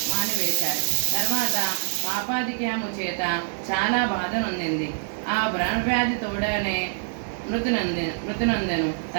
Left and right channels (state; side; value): silent; left; 62 dB below the other